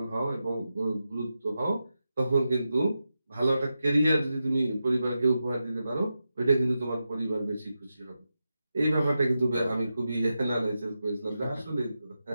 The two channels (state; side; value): inverted; both; correlation -0.90